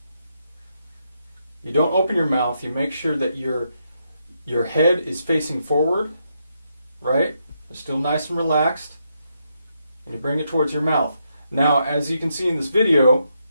you don't open your mouth. You make sure that your head is facing forward, right? It's still nice and relaxed. And you bring it towards your mouth. Now, as you can see in this video,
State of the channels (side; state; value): both; inverted; correlation -0.80